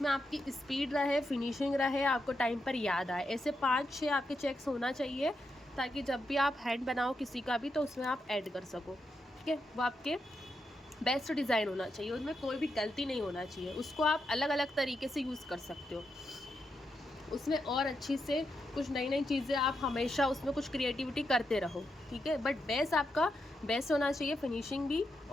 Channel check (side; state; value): both; normal; correlation 0.84